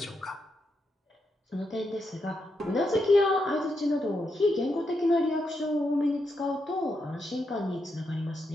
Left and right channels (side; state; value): both; normal; correlation 0.83